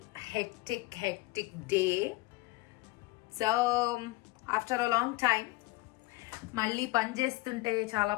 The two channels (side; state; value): right; quieter; 21.3 dB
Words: hectic day. So after a long time మళ్ళీ పని చేస్తుంటే